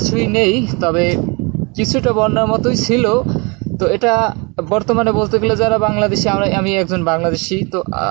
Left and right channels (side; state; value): left; quieter; 29.8 dB